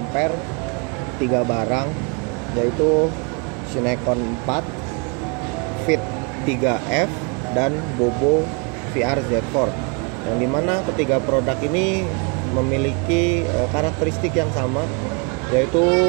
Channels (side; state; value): left; quieter; 32.8 dB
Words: 3 barang, yaitu Cinecon 4, Fit 3F, dan Bobo VR Z4. Yang dimana ketiga produk ini memiliki karakteristik yang sama, yaitu